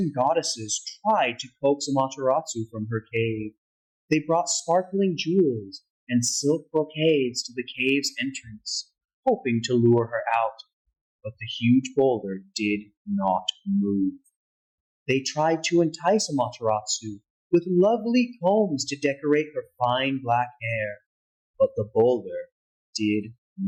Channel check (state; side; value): identical; both; correlation 1.00